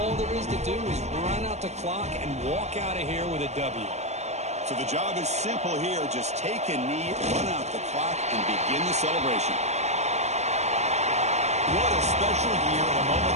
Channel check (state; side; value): late; left; 0.32 ms